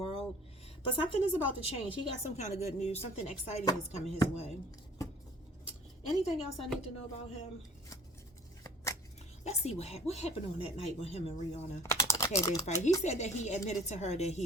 But something is about to change. He got some kind of good news. Something exciting is coming his way. Anything else I need to know about him? Let's see what happened on that night when him and Rihanna had their fight. He said that he admitted to her that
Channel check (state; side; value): normal; both; correlation 0.51